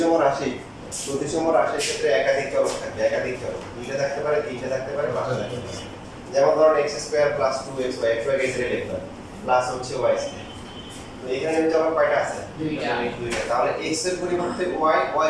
রাশির ক্ষেত্রে একাধিক চলক থাকবে একাধিক চলক দুইটা থাকতে পারে তিনটা থাকতে পারে পাঁচটা থাকতে পারে যেমন ধরুন x square plus 2xy xy কে ছেড়ে লিখলাম প্লাস হচ্ছে y স্কয়ার তো এখানে চলক কয়টা আছে দুইটা দুইটা তাহলে x এর পরিবর্তে y y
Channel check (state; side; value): identical; both; correlation 1.00